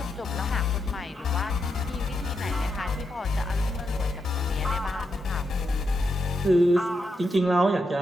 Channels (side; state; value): both; normal; correlation 0.83